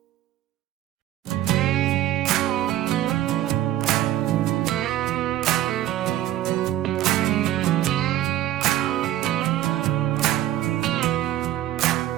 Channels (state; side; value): quieter; left; 13.5 dB